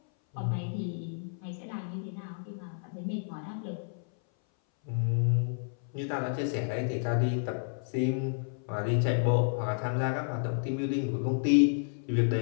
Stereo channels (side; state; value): right; silent; 57 dB below the other